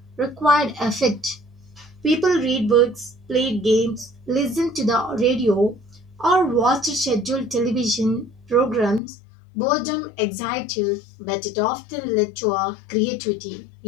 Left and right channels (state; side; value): drops out; right; at 9.0 s